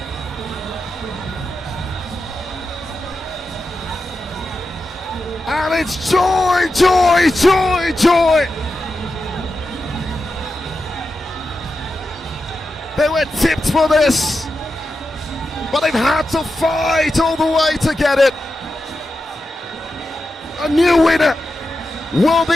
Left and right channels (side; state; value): both; normal; correlation 0.90